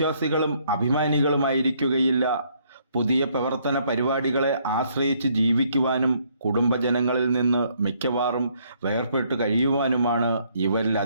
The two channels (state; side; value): inverted; both; correlation -0.68